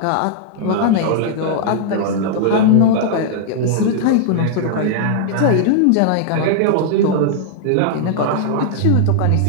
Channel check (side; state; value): both; different; correlation -0.01